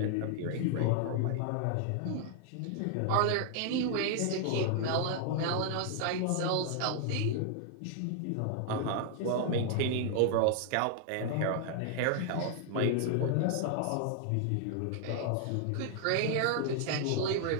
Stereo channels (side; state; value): both; different; correlation 0.00